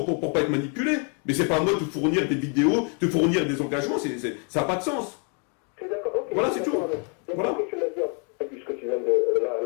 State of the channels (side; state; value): right; quieter; 38.9 dB